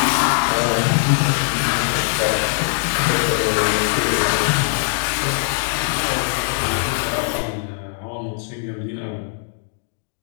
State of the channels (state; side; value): silent; right; digital silence